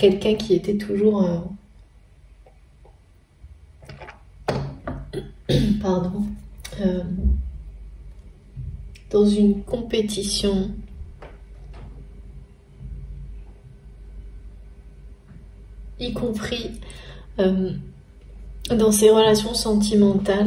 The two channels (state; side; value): identical; both; correlation 1.00